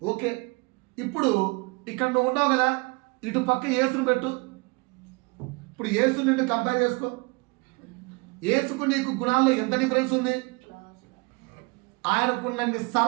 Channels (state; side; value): quieter; left; 28.0 dB